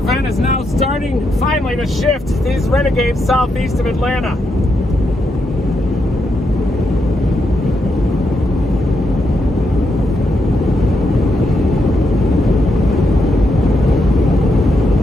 is now starting finally to shift these renegades southeast of Atlanta.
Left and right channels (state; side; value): normal; both; correlation 0.82